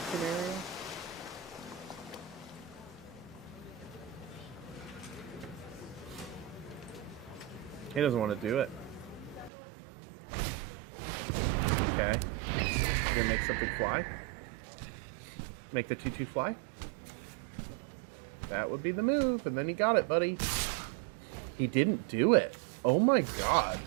scenario. He doesn't want to do it. Okay. We'll make something fly. Make the 2/2 fly. That would be the move, and then he got it, buddy. He didn't do it. Oh my god.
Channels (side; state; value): left; drops out; at 9.5 s